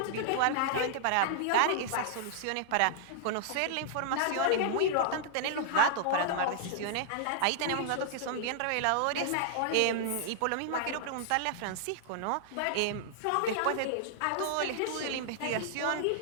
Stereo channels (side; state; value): both; different; correlation -0.01